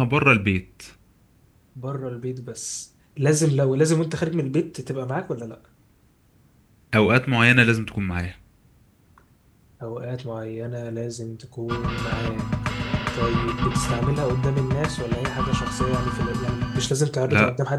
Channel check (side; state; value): both; identical; correlation 1.00